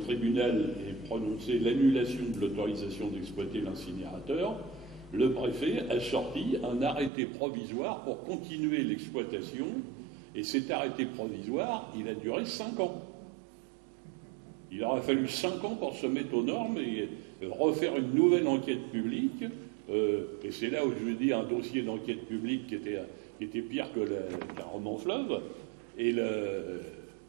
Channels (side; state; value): left; drops out; at 7.1 s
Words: ait prononcé l'annulation de l'autorisation d'exploiter l'incinérateur, le préfet a sorti un arrêté provisoire pour continuer l'exploitation, et cet arrêté provisoire, il a duré 5 ans. Il aura fallu 5 ans pour se mettre aux normes et refaire une nouvelle enquête publique, et c'est là où je dis un dossier d'enquête publique qui était pire qu'un roman fleuve, et